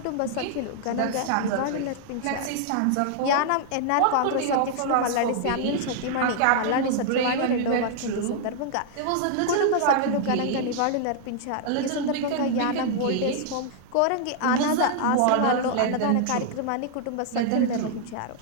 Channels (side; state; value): both; different; correlation -0.01